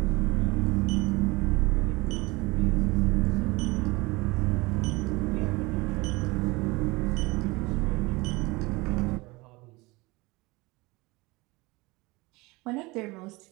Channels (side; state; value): left; quieter; 23.3 dB